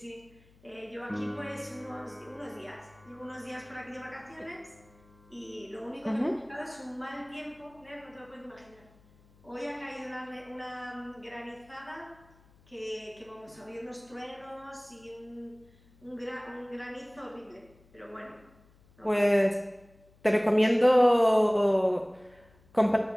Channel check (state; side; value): noise; left; hum, 28 dB below the sound